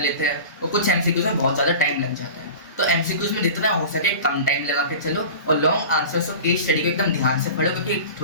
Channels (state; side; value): inverted; both; correlation -0.36